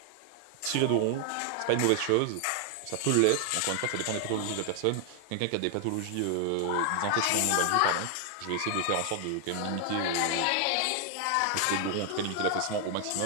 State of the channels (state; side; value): different; both; correlation 0.00